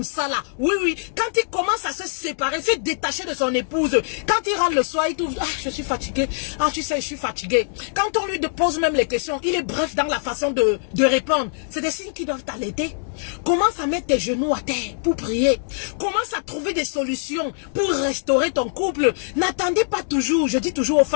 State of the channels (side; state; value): right; silent; digital silence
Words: ça là. Oui, oui. Quand il commence à se séparer, se détacher de son épouse, quand il rentre le soir, il trouve, ah, je suis fatigué. Ah, tu sais, je suis fatigué. Quand on lui pose même les questions, il est bref dans la façon de répondre. C'est des signes qui doivent t'alerter. Commence à mettre tes genoux à terre pour prier. Commence à trouver des solutions pour restaurer ton couple. N'attendez pas toujours, je dis toujours aux